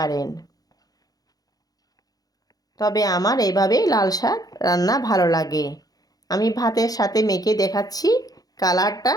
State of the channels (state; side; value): late; right; 0.18 ms